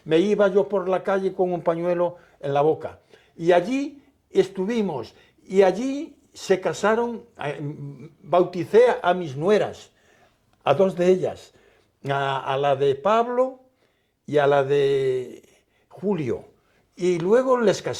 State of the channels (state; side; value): identical; both; correlation 1.00